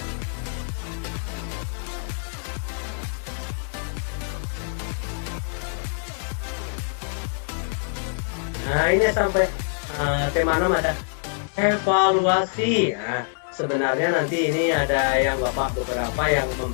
Nah, ini sampai tema 6 ada evaluasi. Nah, sebenarnya nanti ini ada yang Bapak beberapa yang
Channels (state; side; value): silent; right; 62 dB below the other